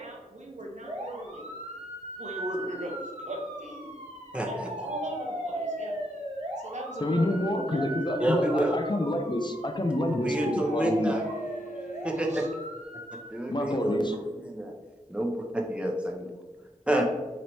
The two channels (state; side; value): normal; both; correlation 0.78